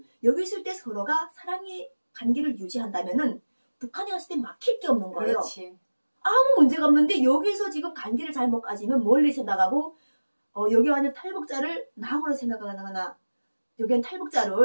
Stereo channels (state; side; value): inverted; both; correlation -1.00